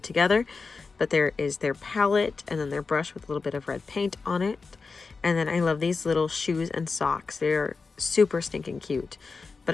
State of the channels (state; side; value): quieter; right; 4.5 dB